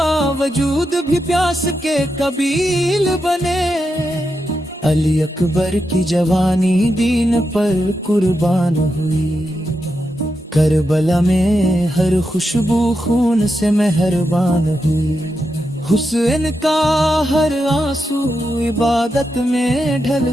بھی پیاس کے قبیل بنے، علی اکبر کی جوانی دین پر قربان ہوئی، کربلا میں ہر خوشبو خون سے مہربان ہوئی، حسین کا ہر آنسو عبادت میں ڈھل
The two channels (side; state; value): both; normal; correlation 0.87